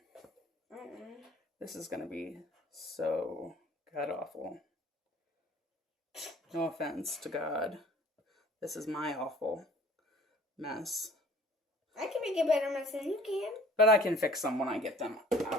This is going to be so god-awful. No offense to God. This is my awful mess. I can make a better mess than you can. But I can fix them when I get them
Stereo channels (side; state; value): both; normal; correlation 0.51